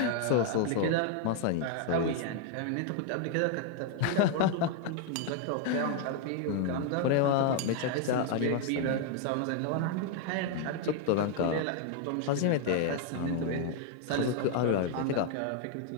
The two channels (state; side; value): different; both; correlation 0.00